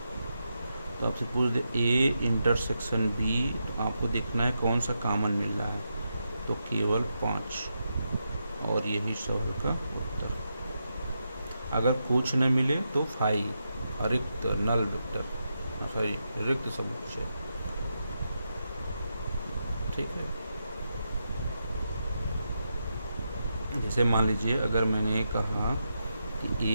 तो आपसे पूछ दे ए इंटरसेक्शन बी, तो आपको देखना है कौन सा कॉमन मिल रहा है। तो केवल 5 और यही सवाल का उत्तर। अगर कुछ न मिले तो 5 रिक्त नल वेक्टर, सॉरी रिक्त समुच्चय। ठीक है, जैसे मान लीजिए अगर मैंने कहा कि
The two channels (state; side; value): inverted; both; correlation -0.85